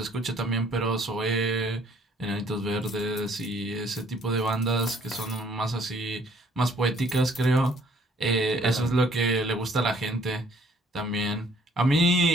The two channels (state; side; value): normal; both; correlation 0.61